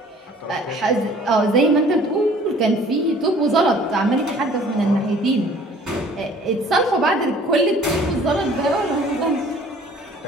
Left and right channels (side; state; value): both; normal; correlation 0.53